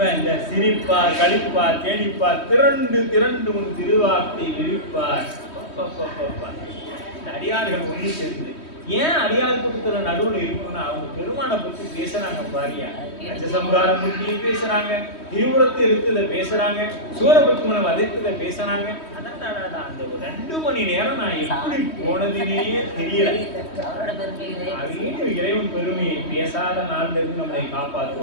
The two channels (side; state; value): right; late; 3.1 ms